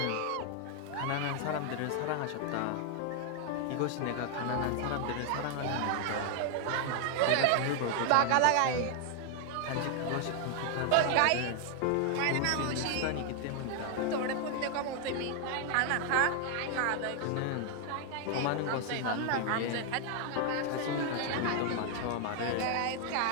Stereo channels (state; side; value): different; both; correlation 0.00